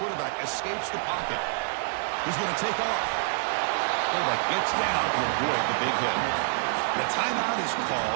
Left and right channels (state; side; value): silent; left; digital silence